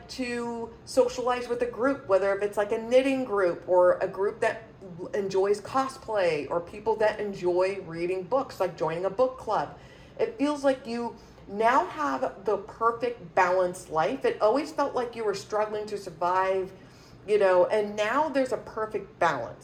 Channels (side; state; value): both; identical; correlation 1.00